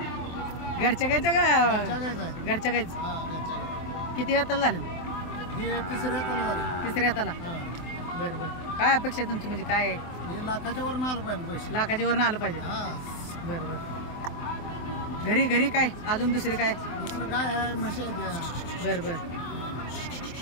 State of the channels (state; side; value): late; right; 23 ms